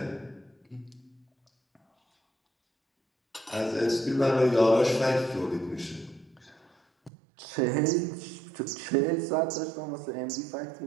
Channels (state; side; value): drops out; left; at 7.1 s